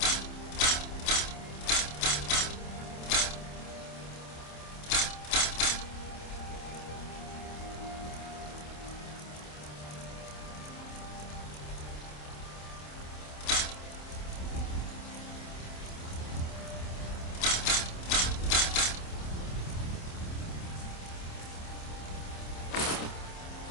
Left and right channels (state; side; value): late; right; 27 ms